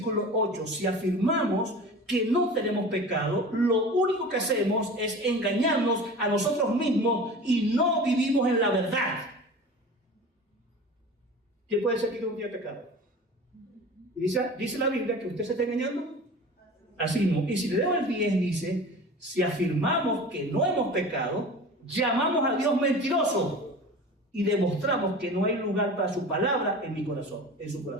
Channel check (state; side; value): normal; both; correlation 0.37